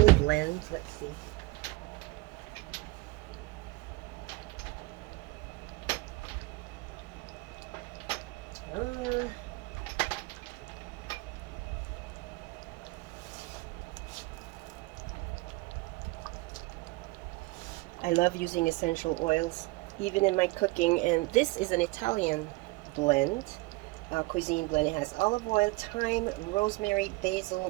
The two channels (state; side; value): quieter; left; 22.9 dB